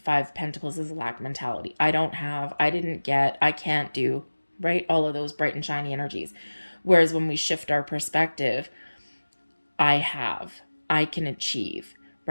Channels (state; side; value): inverted; both; correlation -1.00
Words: of Pentacles is a lack mentality. I don't have, I didn't get, I can't do, right? All of those bright and shiny energies. Whereas when we shift our perspective, I have, I can achieve,